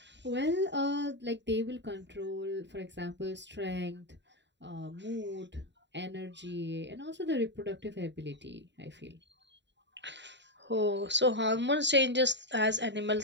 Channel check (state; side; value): late; left; 0.52 ms